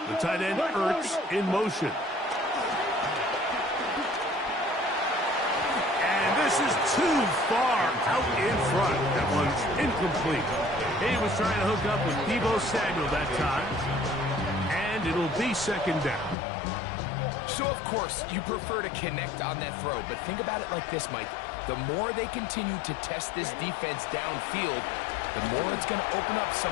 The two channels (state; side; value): drops out; right; at 16.4 s